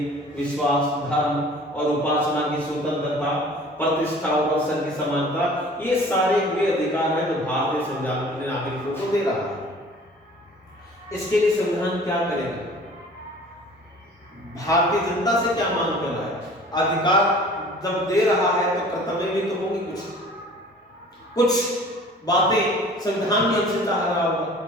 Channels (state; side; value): normal; both; correlation 0.47